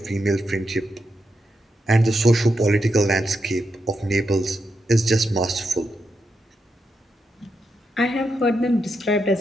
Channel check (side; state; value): both; normal; correlation 0.85